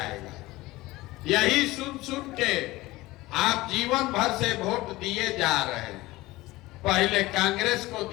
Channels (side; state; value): right; quieter; 19.2 dB